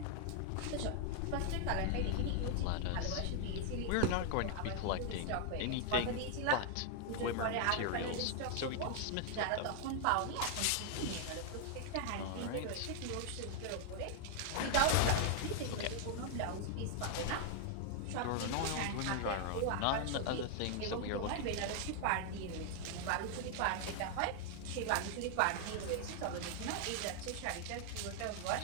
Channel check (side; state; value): both; different; correlation 0.00